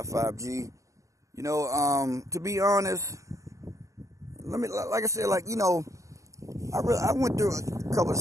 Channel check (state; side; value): late; left; 0.16 ms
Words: 5G. To be honest, like I said, I went through a couple of